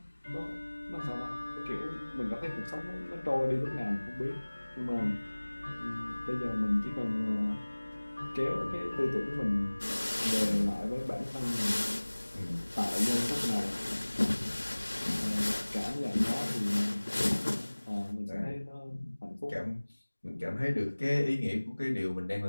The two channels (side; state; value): both; inverted; correlation -1.00